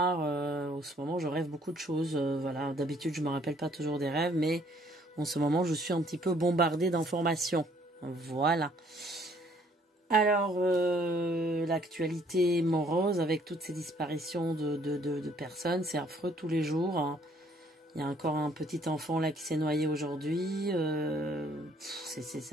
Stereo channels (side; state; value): both; normal; correlation 0.63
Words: En ce moment, je rêve beaucoup de choses. Voilà, d'habitude, je me rappelle pas toujours des rêves, mais en ce moment, je suis un petit peu bombardée d'informations. Voilà. Alors, l'actualité morose avec toutes ces disparitions de personnes, c'est affreux tous les jours. Hein. Il y a encore un petit enfant là qui s'est noyé aujourd'hui. C'est